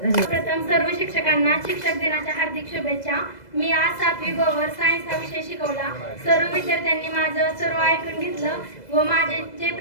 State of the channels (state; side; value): late; right; 2.0 ms